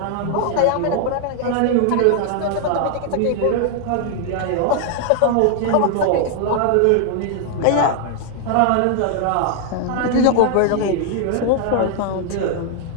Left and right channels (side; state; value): both; different; correlation 0.00